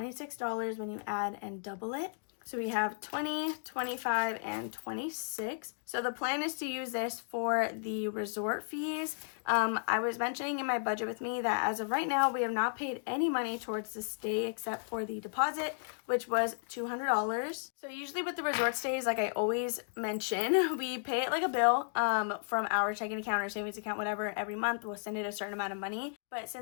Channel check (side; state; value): right; silent; digital silence